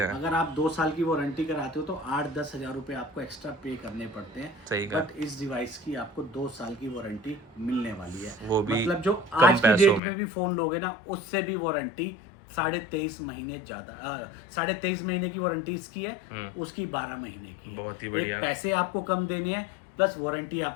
अगर आप 2 साल की वारंटी कराते हो तो 8-10 हज़ार रुपए आपको एक्स्ट्रा पे करने पड़ते हैं। सही। बट इस डिवाइस की आपको 2 साल की वारंटी मिलने वाली है, वो भी मतलब जो आज की डेट में भी फोन लोगे ना उससे भी वारंटी 23.5 महीने ज्यादा, 23.5 महीने की वारंटी इसकी है, उसकी 12 महीने की। बहुत ही बढ़िया। पैसे आपको कम देने हैं प्लस वारंटी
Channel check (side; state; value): right; drops out; at 10.0 s